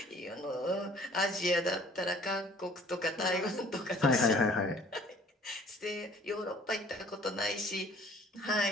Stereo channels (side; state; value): both; normal; correlation 0.54